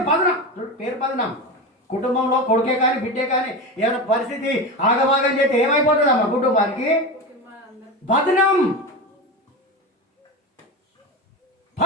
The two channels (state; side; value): normal; both; correlation 0.22